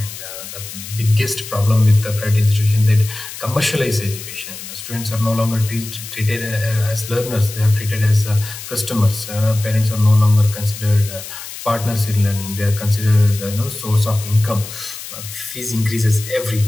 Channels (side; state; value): left; noise; hiss, 11 dB below the sound